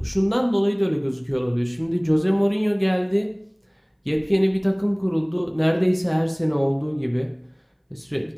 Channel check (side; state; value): both; identical; correlation 1.00